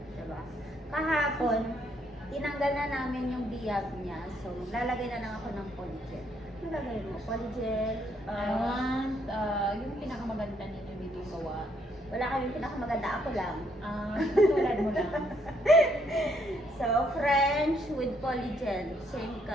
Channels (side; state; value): both; normal; correlation 0.71